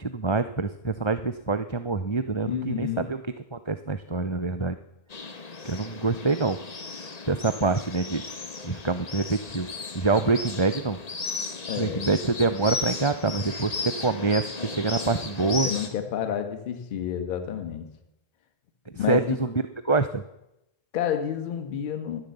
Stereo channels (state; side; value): late; right; 1.8 ms